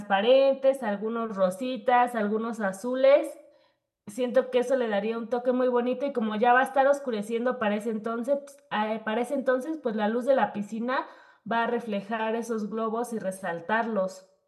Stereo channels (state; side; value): identical; both; correlation 1.00